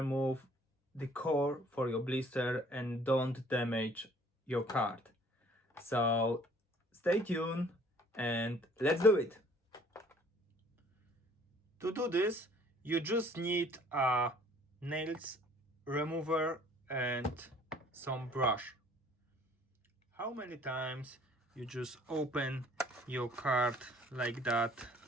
the core for your blister and don't damage your card. So stay tuned and let's do it. To do this, you just need a nails remover and some brush. How many times you just open your card like that?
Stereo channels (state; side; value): normal; both; correlation 0.56